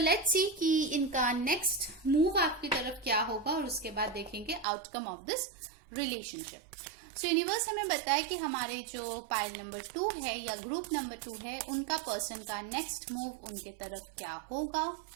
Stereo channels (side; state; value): left; drops out; at 4.7 s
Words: सी कि इनका नेक्स्ट मूव आपकी तरफ क्या होगा, और उसके बाद देखेंगे outcome of this relationship. So universe हमें बताए कि हमारे जो पाइल नंबर 2 है या ग्रुप नंबर 2 है, उनका पर्सन का नेक्स्ट मूव उनके तरफ क्या होगा।